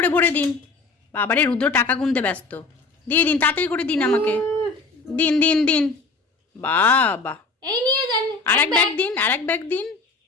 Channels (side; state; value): right; quieter; 3.9 dB